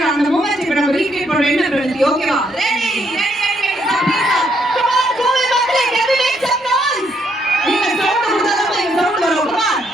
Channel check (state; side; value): normal; both; correlation 0.73